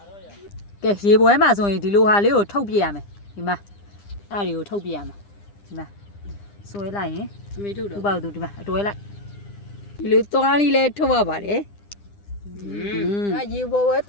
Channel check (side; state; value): right; late; 9.9 ms